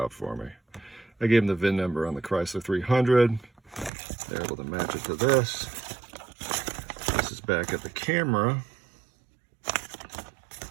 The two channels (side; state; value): left; drops out; at 3.9 s